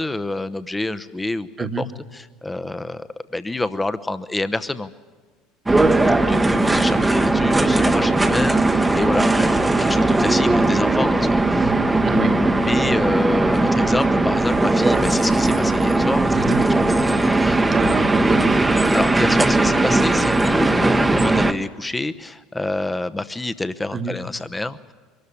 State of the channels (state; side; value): normal; both; correlation 0.92